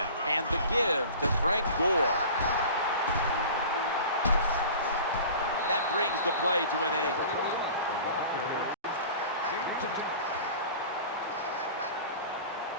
and the give to Frank Gore. That brings the play to an end. The ball carried.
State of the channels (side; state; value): both; inverted; correlation -0.40